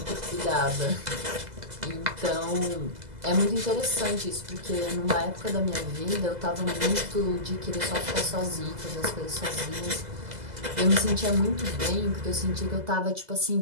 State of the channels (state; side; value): late; left; 2.0 ms